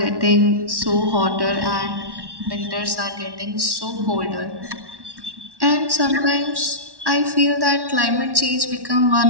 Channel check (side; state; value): left; late; 1.1 ms